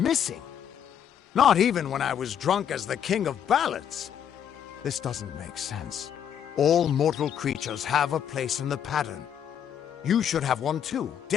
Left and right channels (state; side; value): quieter; right; 9.0 dB